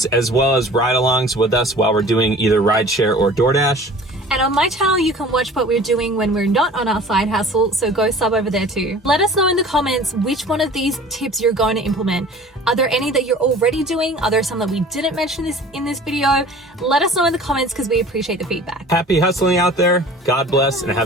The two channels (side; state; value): both; normal; correlation 0.45